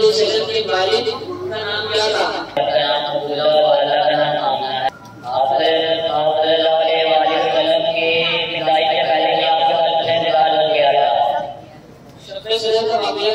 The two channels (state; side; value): identical; both; correlation 1.00